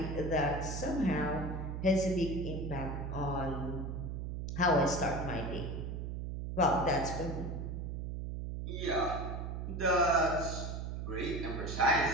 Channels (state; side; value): noise; right; hum, 4 dB below the sound